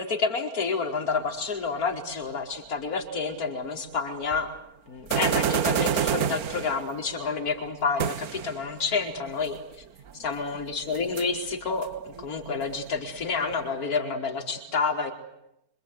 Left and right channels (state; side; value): late; right; 4.4 ms